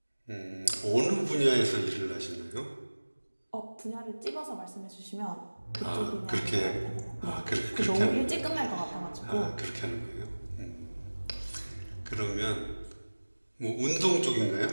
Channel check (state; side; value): inverted; both; correlation -1.00